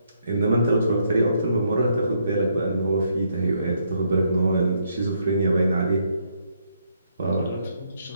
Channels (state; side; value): inverted; both; correlation -0.74